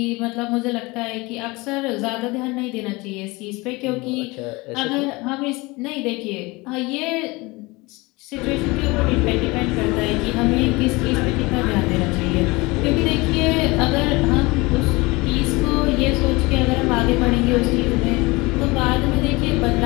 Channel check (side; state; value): right; quieter; 23.6 dB